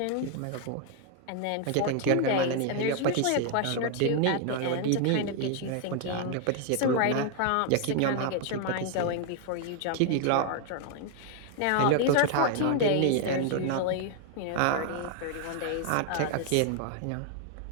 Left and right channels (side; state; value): both; different; correlation 0.00